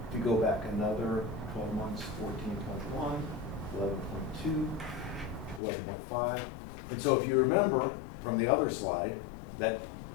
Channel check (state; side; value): drops out; right; at 5.6 s